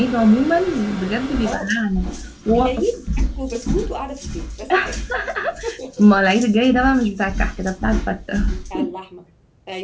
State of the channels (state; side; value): identical; both; correlation 1.00